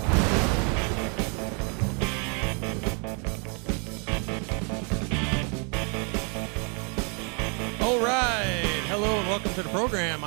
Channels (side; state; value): left; quieter; 36.5 dB